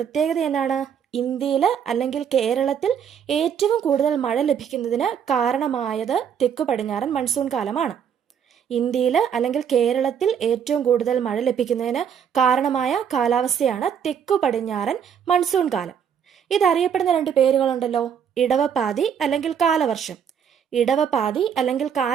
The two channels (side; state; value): left; quieter; 8.0 dB